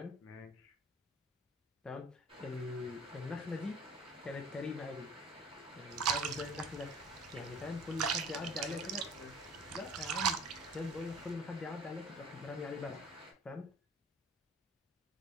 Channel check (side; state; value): both; normal; correlation 0.47